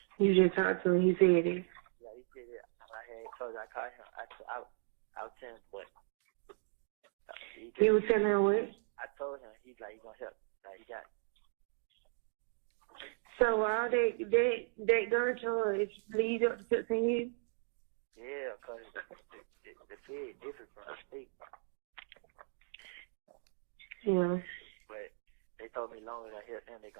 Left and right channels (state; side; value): silent; left; 53 dB below the other